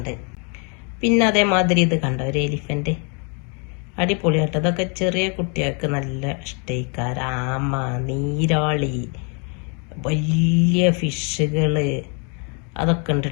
പിന്നെ അതേമാതിരി ഇത് കണ്ട ഒരു എലിഫന്റ് അടിപൊളിയാട്ടോ. ഇതൊക്കെ ചെറിയ കുട്ടികൾക്ക് നല്ല ഇഷ്ടയിക്കാർ. ആമ, നീരാളി, വലിയ ഫിഷുകള് അതൊക്കെ ഉണ്ട്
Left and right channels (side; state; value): right; quieter; 36.6 dB